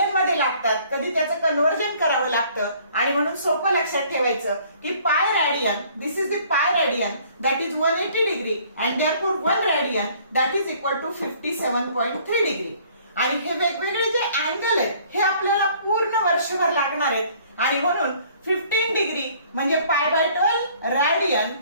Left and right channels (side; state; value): both; inverted; correlation -0.57